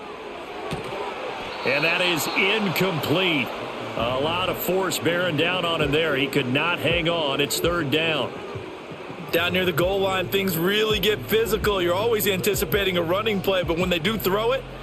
And that is incomplete. A lot of force bearing down on him there. He could not hang on. It's 3rd down. Down near the goal line, things really get physical. You're always anticipating a running play, but when they do throw it,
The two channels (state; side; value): identical; both; correlation 1.00